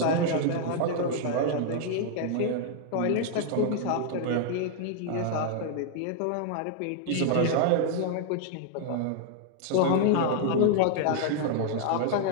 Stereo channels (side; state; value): both; different; correlation 0.00